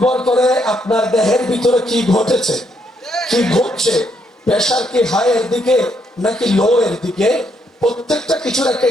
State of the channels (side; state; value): both; normal; correlation 0.74